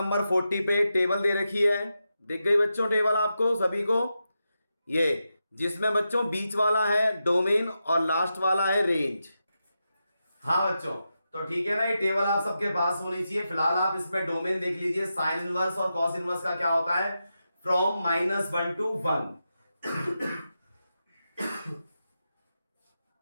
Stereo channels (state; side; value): inverted; both; correlation -0.88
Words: 40 पे टेबल दे रखी है। दिख गई बच्चों टेबल आपको सभी को? ये जिसमें बच्चों बीच वाला है डोमेन और लास्ट वाला है रेंज। हाँ बच्चों, तो ठीक है ना, ये टेबल आप सबके पास होनी चाहिए। फिलहाल आप इसमें डोमेन देख लीजिए। साइन इनवर्स और कॉस इनवर्स का क्या होता है? From -1 to 1।